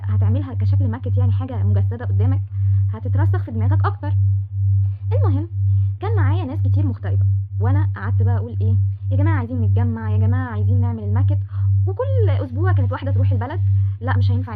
كشكل ماكت يعني حاجة مجسدة قدامك هتترسخ في دماغك اكتر. المهم كان معايا ناس كتير مغتربة، وانا قعدت بقى اقول ايه يا جماعة عايزين نتجمع، يا جماعة عايزين نعمل الماكت. وكل اسبوع كانت واحدة تروح البلد، لا مش هينفع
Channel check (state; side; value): identical; both; correlation 1.00